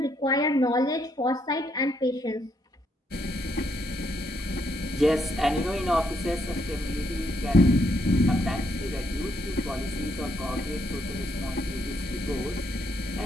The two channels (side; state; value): both; normal; correlation 0.75